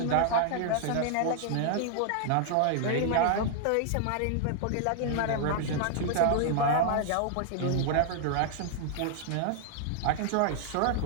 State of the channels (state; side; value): different; both; correlation 0.00